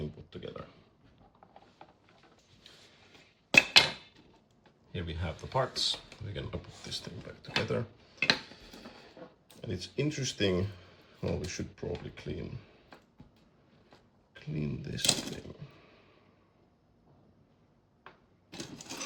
put together. Here we have the parts. We're gonna put this thing back together. And it's interesting, well, we should probably clean this thing.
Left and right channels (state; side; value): identical; both; correlation 1.00